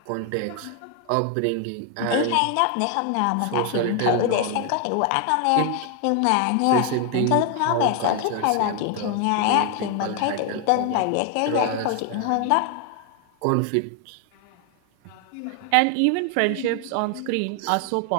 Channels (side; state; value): both; different; correlation 0.01